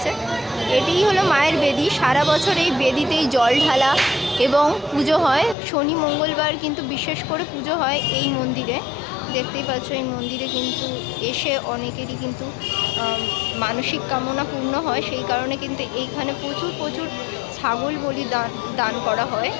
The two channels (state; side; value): drops out; right; at 5.6 s